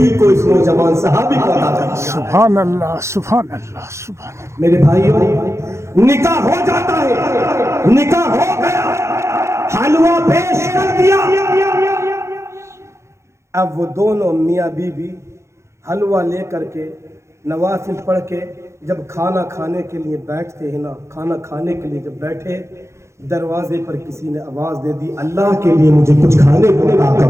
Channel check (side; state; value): left; late; 0.14 ms